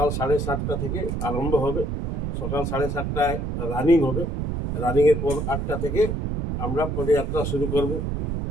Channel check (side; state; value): right; noise; rumble, 2 dB below the sound